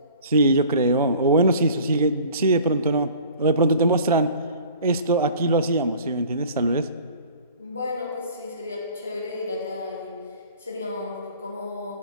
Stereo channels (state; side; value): inverted; both; correlation -0.47